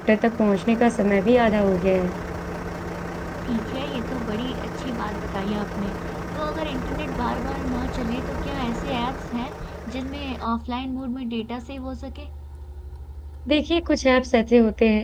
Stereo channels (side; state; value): both; identical; correlation 1.00